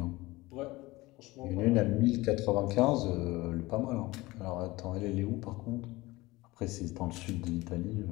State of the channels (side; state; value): right; quieter; 20.4 dB